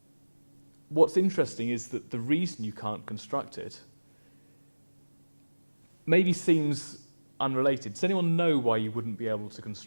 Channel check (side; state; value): both; inverted; correlation -1.00